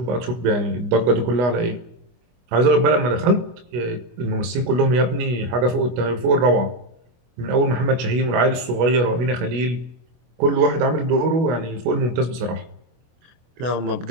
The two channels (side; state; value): left; late; 24 ms